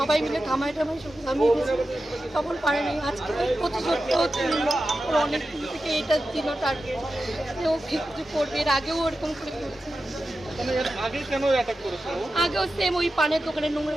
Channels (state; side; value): normal; both; correlation 0.92